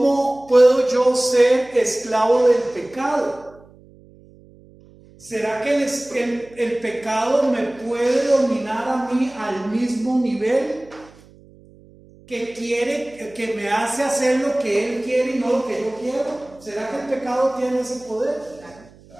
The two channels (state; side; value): noise; right; hum, 25 dB below the sound